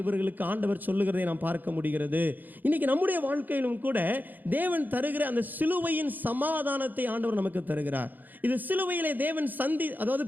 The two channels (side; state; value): left; late; 0.086 ms